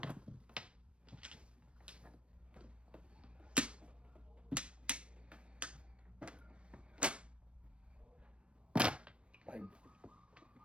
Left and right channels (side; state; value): left; late; 0.059 ms